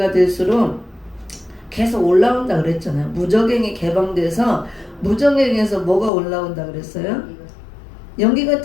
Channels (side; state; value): right; drops out; at 6.1 s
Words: 될수록 계속 올라온다 그랬잖아요. 무적행이 개방돼서 무적행에서 뭐가 올라온다 그랬어요? 연기